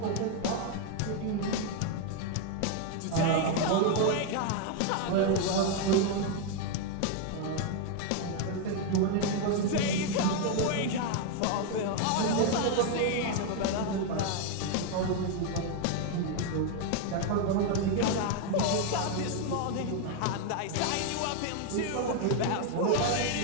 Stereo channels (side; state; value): both; different; correlation 0.01